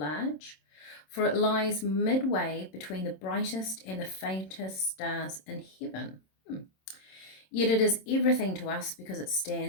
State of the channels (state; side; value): late; right; 27 ms